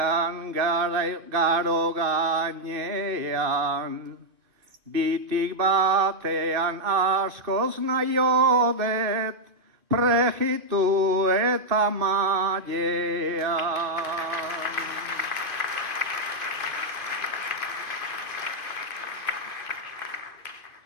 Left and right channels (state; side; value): late; left; 2.6 ms